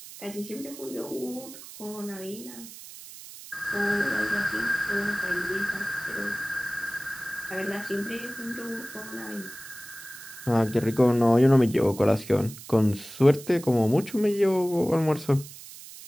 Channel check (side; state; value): right; noise; hiss, 15 dB below the sound